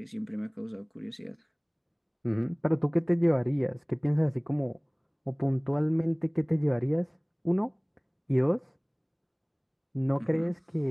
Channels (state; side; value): identical; both; correlation 1.00